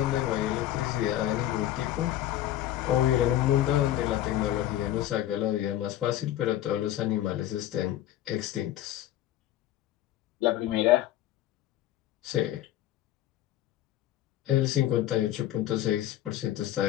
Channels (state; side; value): quieter; right; 13.1 dB